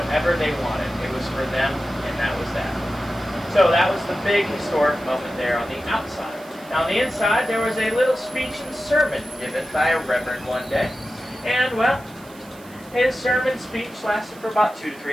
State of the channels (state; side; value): noise; right; hiss, 23 dB below the sound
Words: they wanted. It was for them, and that was that. So that was the big historic moment there on the outside. Now on the inside, there was a little speech and sermon given by a reverend one day. And, well, his sermon speech lasted for about 2 to